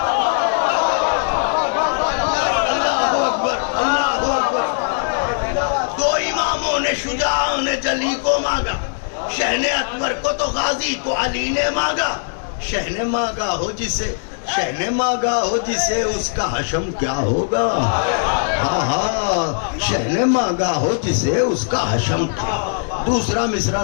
شجاع نے جلی کو مانگا، شہن اکبر کو تو غازی کو علی نے مانگا، شہن مانگا ہو جسے، شہن مانگا ہو جسے اس کا حشم کیا ہوگا، ہاں ہاں شہن مانگا ہو جسے اس کا حشم کیا ہوگا۔ دوسرا مصرع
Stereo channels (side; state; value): right; silent; digital silence